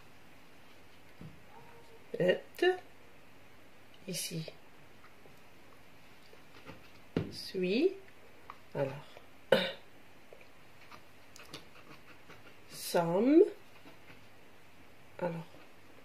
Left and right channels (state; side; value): identical; both; correlation 1.00